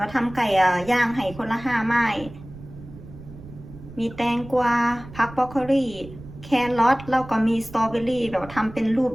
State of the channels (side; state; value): right; noise; rumble, 16 dB below the sound